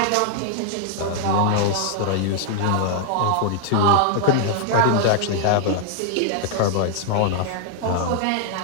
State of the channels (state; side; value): different; both; correlation -0.01